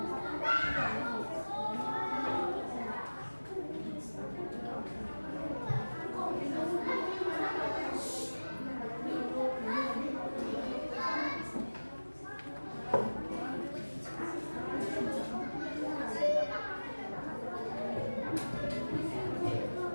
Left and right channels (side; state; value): both; inverted; correlation -1.00